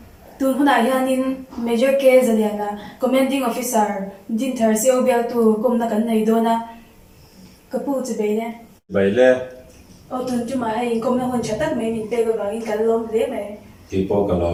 tun huna hianin major case aliana commanding officer din thar seo bel tu komna kan nei dona kapu chibai le bai le o tun chu ma hai komna hon chatak mai min pe ga in kan lom le mai ti po ka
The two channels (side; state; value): both; identical; correlation 1.00